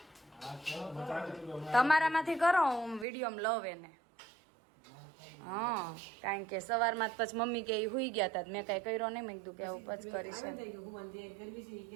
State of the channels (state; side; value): drops out; left; at 3.1 s